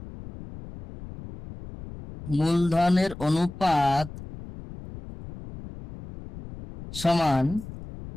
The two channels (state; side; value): noise; left; rumble, 14 dB below the sound